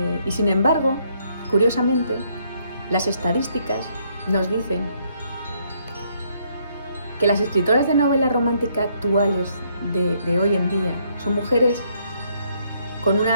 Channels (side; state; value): both; inverted; correlation -0.70